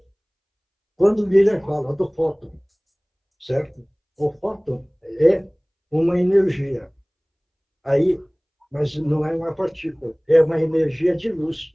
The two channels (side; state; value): both; identical; correlation 1.00